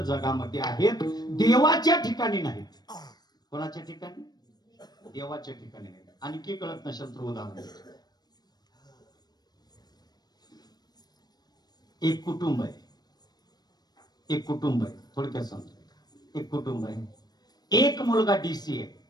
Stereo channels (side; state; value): right; late; 0.19 ms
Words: जगामध्ये आहेत, देवाच्या ठिकाणी नाहीत. कोणाच्या ठिकाणी? देवाच्या ठिकाणी नाहीत. आणखी कळत नसेल तर उदाहरण, एक कुटुंब आहे, एक कुटुंब आहे, थोडक्यात सांगतो. एक कुटुंब आहे, एक मुलगा डीसी आहे,